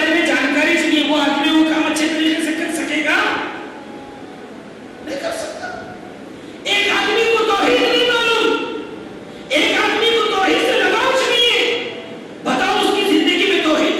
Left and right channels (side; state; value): both; identical; correlation 1.00